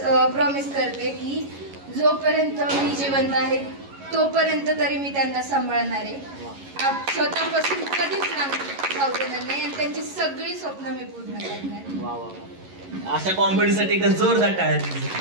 प्रॉमिस करते की जोपर्यंत मी जिवंत आहे तोपर्यंत तरी मी त्यांना सांभाळणार आहे. स्वतःपासून कधीच जाऊ देणार नाही आणि त्यांची सगळी स्वप्न मी पूर्ण करणार. अशा कॉमेडीसाठी जोरदार टाळ्या.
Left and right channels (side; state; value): left; late; 11 ms